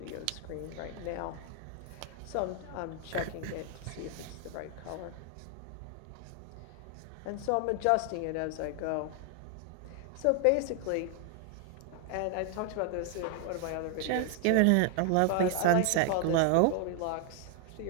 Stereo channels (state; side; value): different; both; correlation 0.00